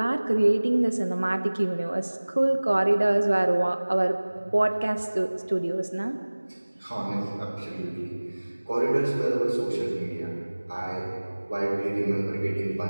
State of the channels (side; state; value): both; inverted; correlation -1.00